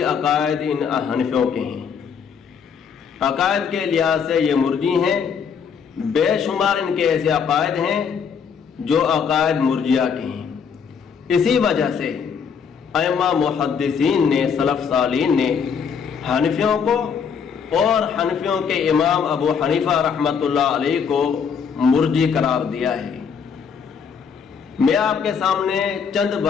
عقائد ان حنفیوں کے ہیں۔ عقائد کے لحاظ سے یہ مرجی ہیں، بے شمار ان کے ایسے عقائد ہیں جو عقائد مرجیہ کے ہیں۔ اسی وجہ سے ائمہ محدثین نے، سلف صالحین نے حنفیوں کو اور حنفیوں کے امام ابو حنیفہ رحمۃ اللہ علیہ کو مرجی قرار دیا ہے۔ میں آپ کے سامنے چند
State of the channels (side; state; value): right; quieter; 6.7 dB